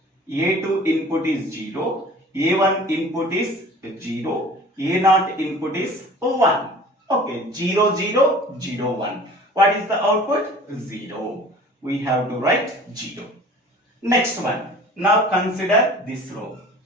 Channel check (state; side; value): normal; both; correlation 0.45